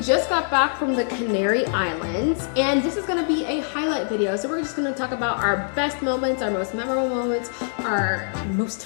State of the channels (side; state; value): right; silent; digital silence